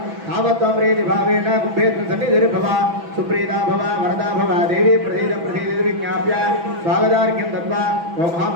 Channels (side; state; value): left; late; 6.0 ms